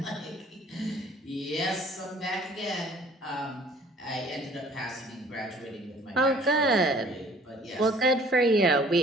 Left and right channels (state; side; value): normal; both; correlation 0.54